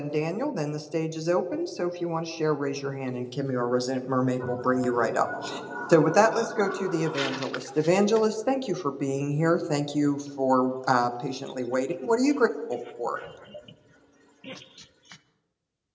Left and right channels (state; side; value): identical; both; correlation 1.00